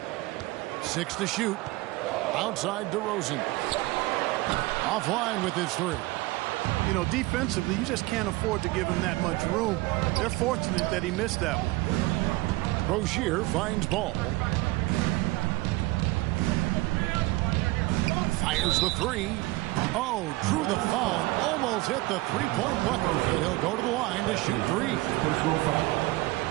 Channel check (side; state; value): left; quieter; 20.7 dB